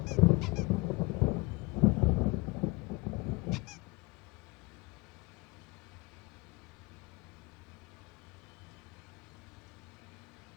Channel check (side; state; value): right; quieter; 24.7 dB